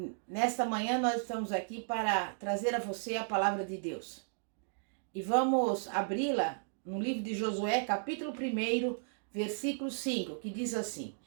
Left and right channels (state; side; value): silent; left; digital silence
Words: Nesta manhã nós estamos aqui para trazer a você a palavra de Deus. E vamos abri-la no livro de Josué, capítulo 1, versículo 5, que diz assim: